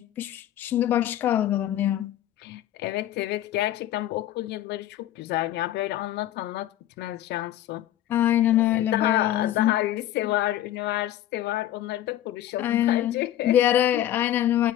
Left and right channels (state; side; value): quieter; right; 12.7 dB